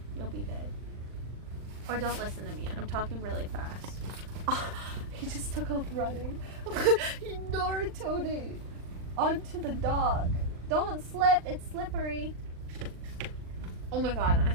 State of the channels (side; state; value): left; late; 39 ms